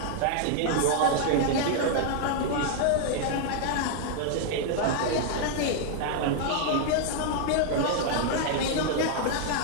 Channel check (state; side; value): different; both; correlation 0.00